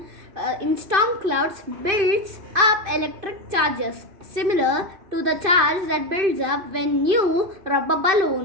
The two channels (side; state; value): left; late; 2.5 ms